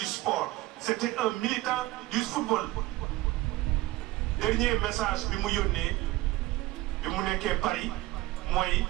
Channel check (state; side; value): quieter; left; 17.6 dB